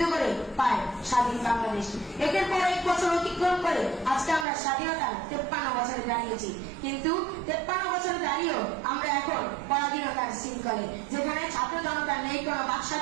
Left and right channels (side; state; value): left; drops out; at 4.5 s